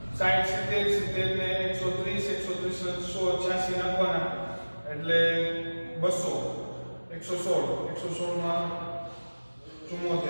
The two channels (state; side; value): inverted; both; correlation -1.00